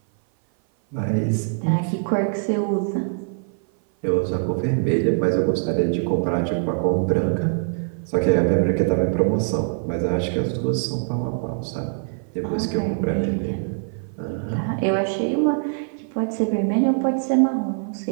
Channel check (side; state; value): left; silent; 57 dB below the other